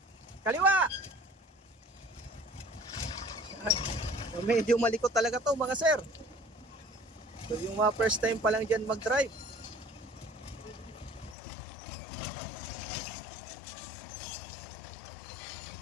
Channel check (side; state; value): right; drops out; at 11.4 s